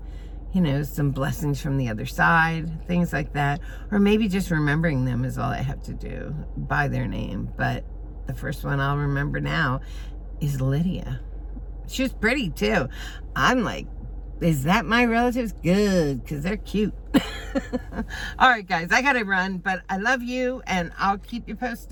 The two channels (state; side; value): identical; both; correlation 1.00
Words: you know, some blessings from the other side, things like that. Or maybe just remembering them is all I have to do by their name. But the first one I'll remember now is Lydia. She was pretty too. I'm like, is that my relatives? Good, because they're cute. All right, guys, I gotta run, but I love you, and I'll keep you